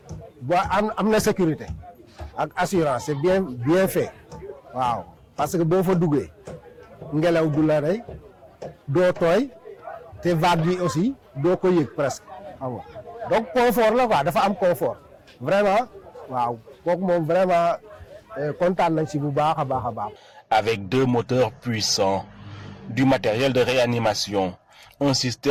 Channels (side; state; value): both; identical; correlation 1.00